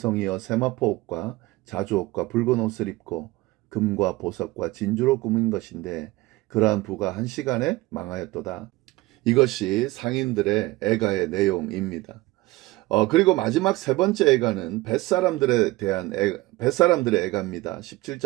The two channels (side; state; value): left; quieter; 20.0 dB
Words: 세마포 옷과 자주 옷과 붉은 옷을 입고 금과 보석과 진주로 꾸민 것인데 그러한 부가 한 시간에 망하였도다. 이것이 상인들의 애가의 내용입니다. 그리고 마지막 세 번째 애가는 뱃사람들의 애가입니다.